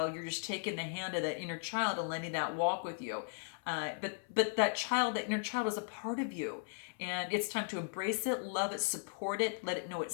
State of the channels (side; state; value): right; silent; 53 dB below the other